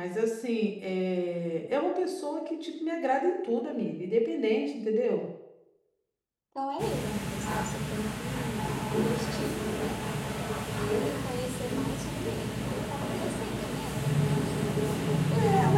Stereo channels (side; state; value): both; identical; correlation 1.00